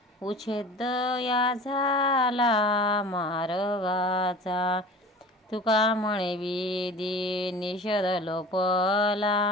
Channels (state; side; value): normal; both; correlation 0.40